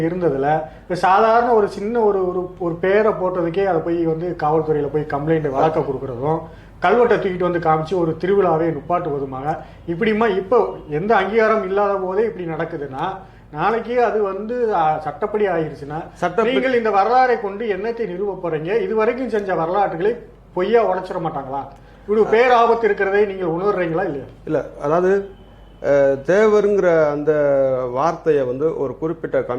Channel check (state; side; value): identical; both; correlation 1.00